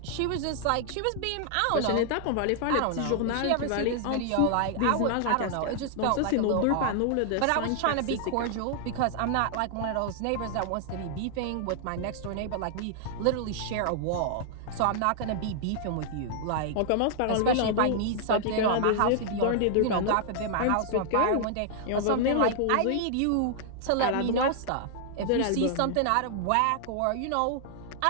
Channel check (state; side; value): different; both; correlation -0.01